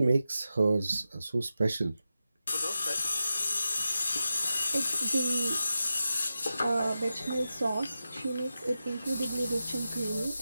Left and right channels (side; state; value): both; inverted; correlation -0.91